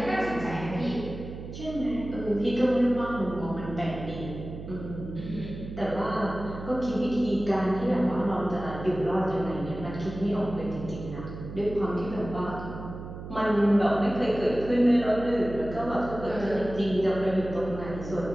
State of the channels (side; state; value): right; noise; hum, 10 dB below the sound